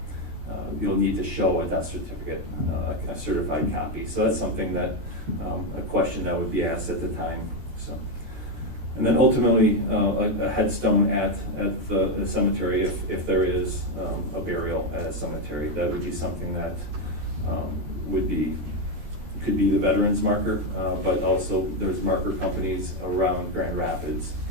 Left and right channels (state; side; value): late; left; 14 ms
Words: you'll need to show a death certificate, a certified copy. So that's something that a question that would be asked at the time. So. And then ultimately, a headstone at the cemetery, if there is a burial at a cemetery, that would be something that could be the veterans marker, but also there's marker companies around Grand Rapids